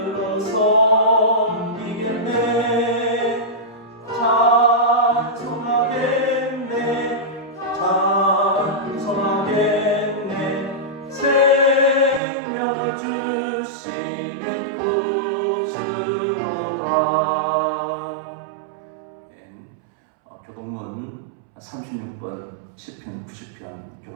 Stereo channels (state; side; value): drops out; left; at 12.2 s